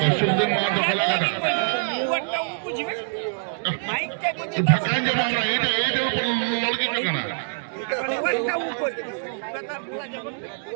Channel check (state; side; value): silent; left; digital silence